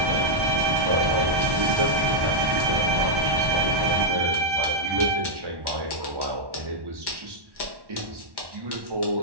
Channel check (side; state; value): left; late; 1.1 ms